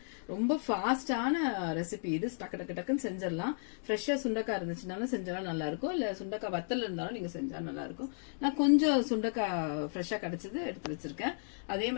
ரொம்ப ஃபாஸ்டான ரெசிபி இது. டக்கு டக்கு டக்குன்னு செஞ்சிடலாம். ஃப்ரெஷ்ஷா சுண்டக்காய் இருந்துச்சுனாலும் செஞ்சாலும் நல்லா இருக்கும், இல்ல சுண்டக்காய் வத்தல் இருந்தாலும் நீங்க செஞ்சா நல்லா இருக்கும். நான் கொஞ்சம் சுண்டக்காய் ஃப்ரெஷ்ஷா கிடைச்சது எடுத்து வச்சிருக்கேன். அதே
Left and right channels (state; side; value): silent; right; digital silence